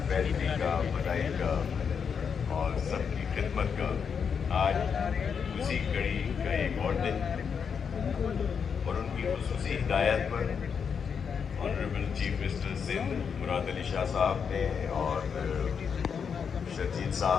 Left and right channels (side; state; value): right; quieter; 6.6 dB